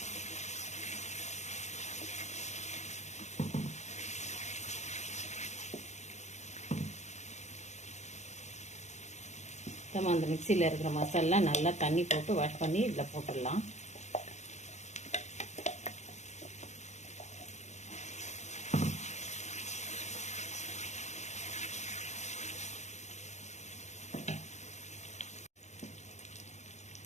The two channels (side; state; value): right; late; 0.33 ms